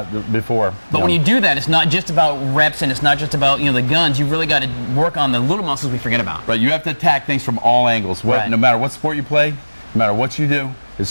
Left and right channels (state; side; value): inverted; both; correlation -1.00